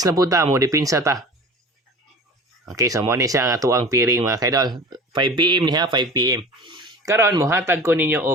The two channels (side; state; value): both; normal; correlation 0.38